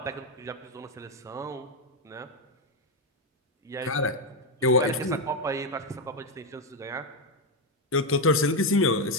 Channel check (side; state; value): both; normal; correlation 0.07